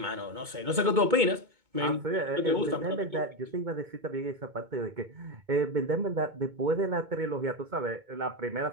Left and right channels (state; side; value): late; left; 2.2 ms